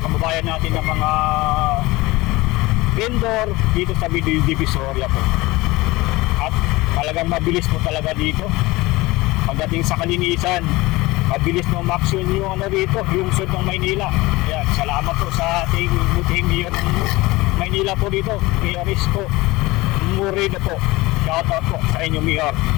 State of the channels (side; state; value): right; quieter; 20.9 dB